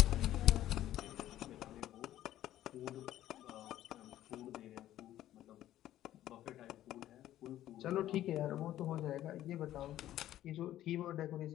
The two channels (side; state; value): right; quieter; 13.1 dB